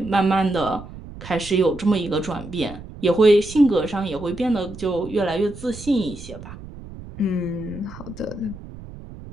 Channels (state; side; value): noise; right; rumble, 14 dB below the sound